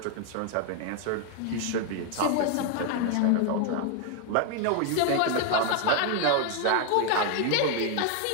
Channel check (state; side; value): different; both; correlation 0.01